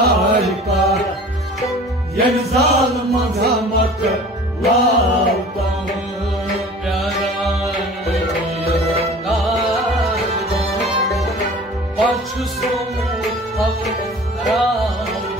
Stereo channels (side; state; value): both; normal; correlation 0.43